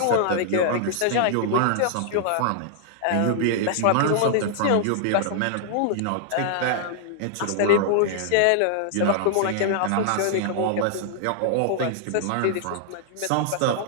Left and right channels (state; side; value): different; both; correlation -0.01